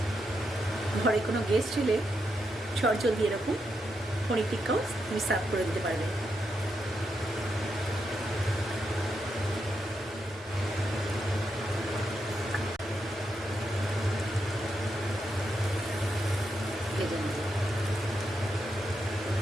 ঘরে কোনো গেস্ট এলে চটজলদি এরকম পনির টিক্কাও তুমি সার্ভ করে দিতে পারবে। ভেজে নেব।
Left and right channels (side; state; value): both; normal; correlation 0.83